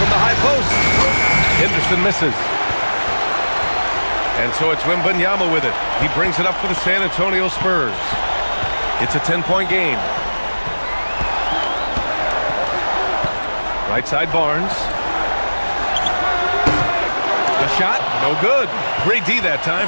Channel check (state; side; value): inverted; both; correlation -1.00